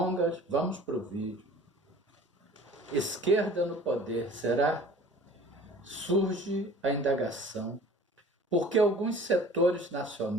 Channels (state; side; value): normal; both; correlation 0.46